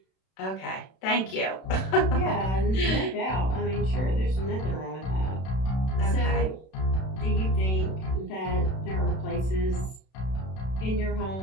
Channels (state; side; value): late; right; 32 ms